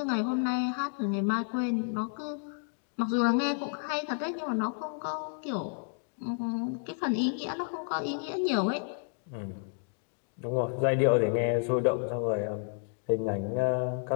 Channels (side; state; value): right; silent; 57 dB below the other